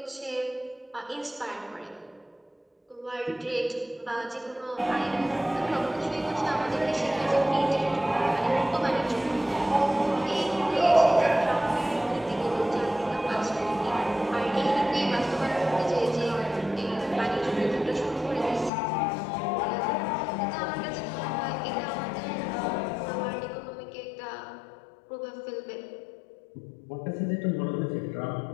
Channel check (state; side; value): drops out; right; at 18.7 s